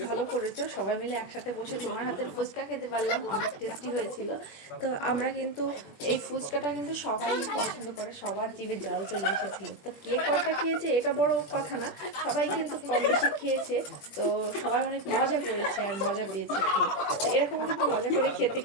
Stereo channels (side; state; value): right; late; 21 ms